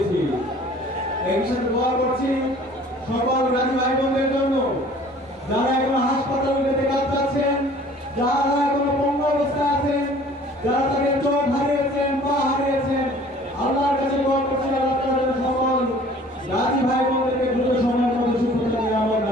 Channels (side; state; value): both; normal; correlation 0.50